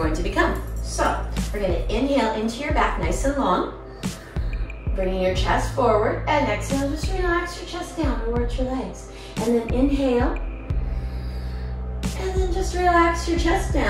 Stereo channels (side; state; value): both; identical; correlation 1.00